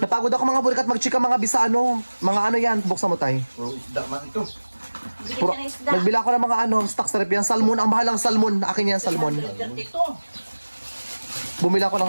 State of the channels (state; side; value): inverted; both; correlation -1.00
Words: ako mga burikat magchika mga bisa ano. Mga ano yan. Buksan mo tayo. Puro isda man ito. Bili Puro, ka ng isda. nagbila ko ng mga ano, stock sa rep yan. Salmon, ang bahalang salmon. Akin yan, salmon. Dito. Bumila ko